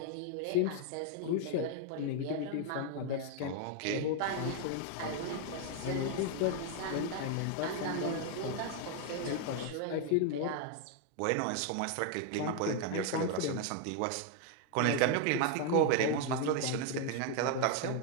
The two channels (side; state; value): both; different; correlation 0.00